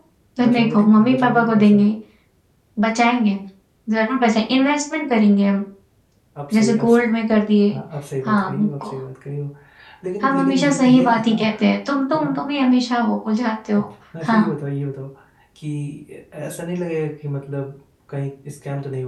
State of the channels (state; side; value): identical; both; correlation 1.00